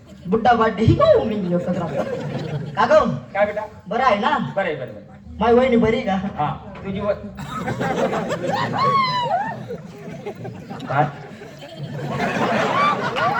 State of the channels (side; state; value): both; identical; correlation 1.00